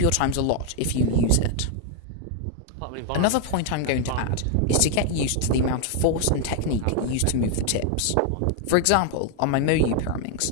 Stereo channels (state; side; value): different; both; correlation 0.00